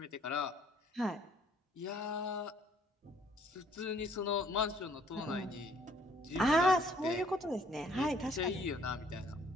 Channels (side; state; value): both; normal; correlation 0.61